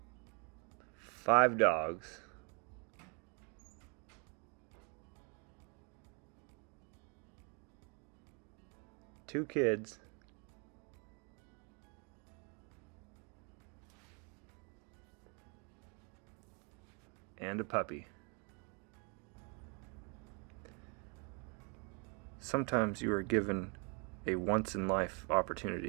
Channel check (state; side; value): quieter; left; 35.3 dB